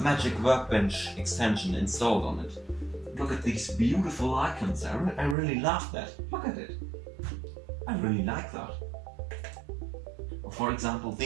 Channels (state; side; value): drops out; left; at 5.4 s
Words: Magic Workbench extension installed on it. Look at these beautiful icons, I really love that. Look at it. I really like that. For example,